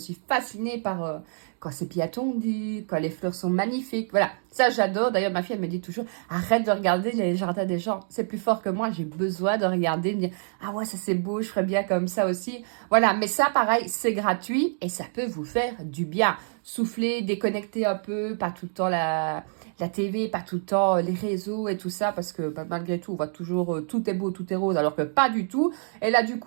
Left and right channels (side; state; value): left; silent; digital silence